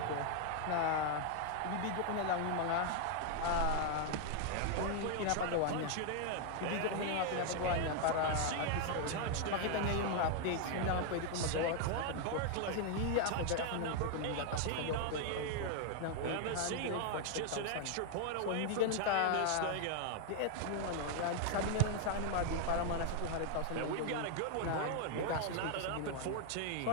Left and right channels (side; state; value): both; different; correlation 0.00